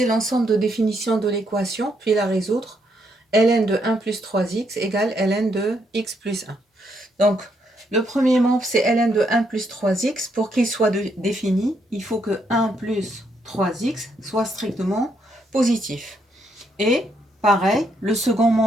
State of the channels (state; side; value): normal; both; correlation 0.75